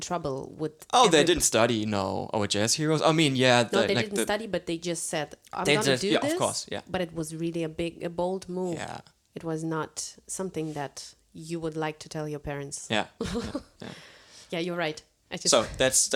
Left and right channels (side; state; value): both; identical; correlation 1.00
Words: trouble with. Oh, they didn't study. No, our jazz heroes. I mean, yeah, No, they didn't study, but they just said, "I'm They gonna just- do yeah, this." of course, yeah. But it was really a bold move. Yeah, It was not something that you would like to tell your parents. yeah. Yeah, you're right. I just So that's